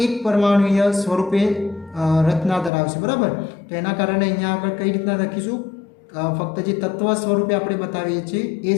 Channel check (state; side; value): drops out; right; at 2.7 s